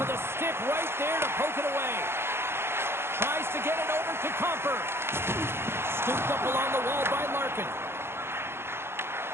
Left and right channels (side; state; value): left; late; 0.12 ms